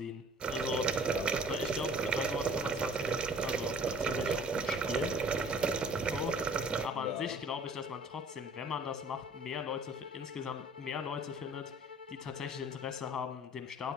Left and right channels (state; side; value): normal; both; correlation 0.50